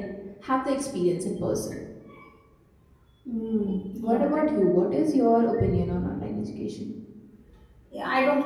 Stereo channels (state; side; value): identical; both; correlation 1.00